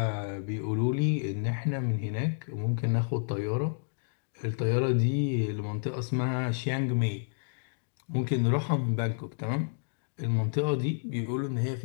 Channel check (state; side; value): silent; right; digital silence